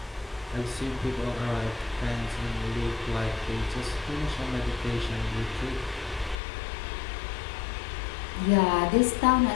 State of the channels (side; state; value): right; drops out; at 6.4 s